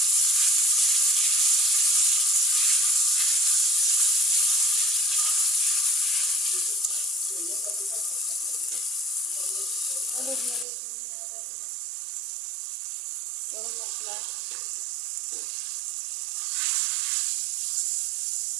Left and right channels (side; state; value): left; drops out; at 10.7 s